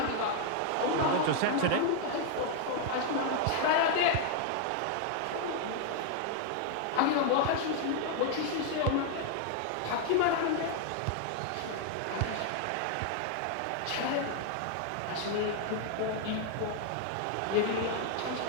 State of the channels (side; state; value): both; different; correlation 0.00